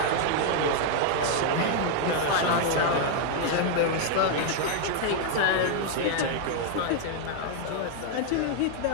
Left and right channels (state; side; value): different; both; correlation 0.00